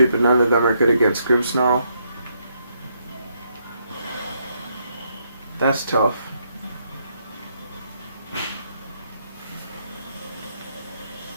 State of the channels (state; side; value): inverted; both; correlation -0.75